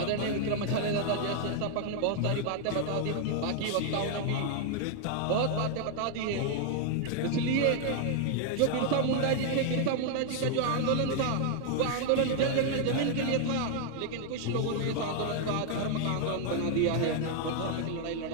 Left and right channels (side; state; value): both; different; correlation 0.00